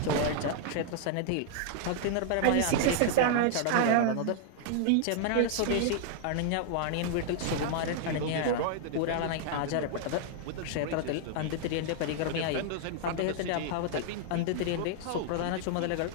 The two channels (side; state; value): both; different; correlation 0.00